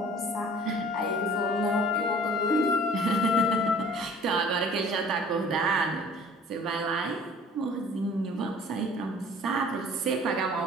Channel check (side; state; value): both; normal; correlation 0.49